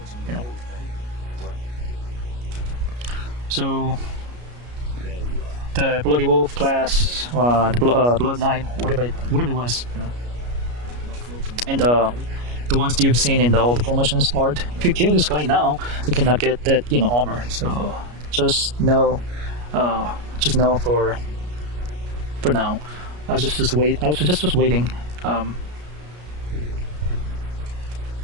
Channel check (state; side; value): late; left; 33 ms